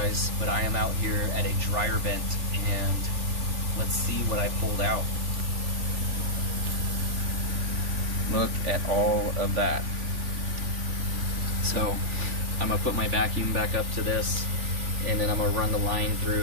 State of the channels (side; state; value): left; late; 3.4 ms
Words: but I am out here at a dryer vent, and let's see what I pulled out. Look at all of that. So I'm gonna put my vacuum back up to this, and then I'm gonna run the line